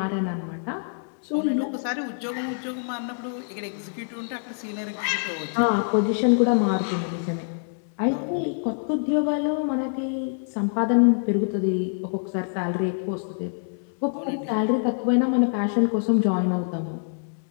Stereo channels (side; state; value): right; silent; digital silence